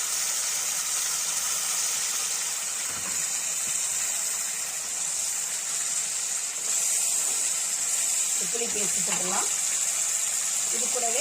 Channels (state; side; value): identical; both; correlation 1.00